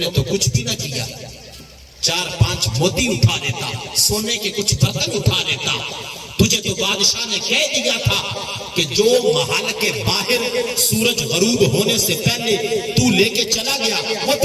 تو کچھ بھی نہ کیا۔ 4-5 موتی اٹھا لیتا، سونے کے کچھ برتن اٹھا لیتا۔ تجھے تو بادشاہ نے کہہ دیا تھا کہ جو محل کے باہر سورج غروب ہونے سے پہلے تو لے کے چلا گیا وہ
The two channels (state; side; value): identical; both; correlation 1.00